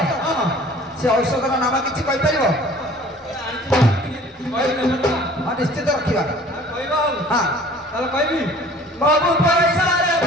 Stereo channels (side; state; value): both; normal; correlation 0.49